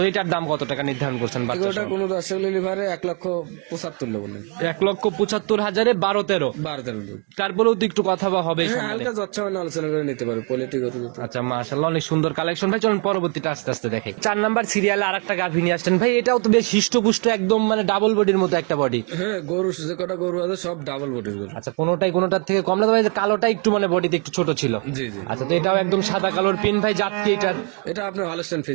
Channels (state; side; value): quieter; left; 35.7 dB